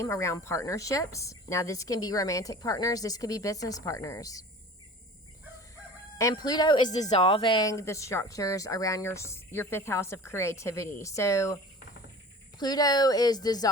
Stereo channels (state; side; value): normal; both; correlation 0.41